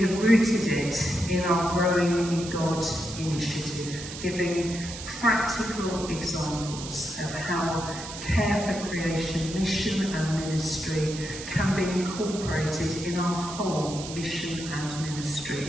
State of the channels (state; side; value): noise; right; hiss, 10 dB below the sound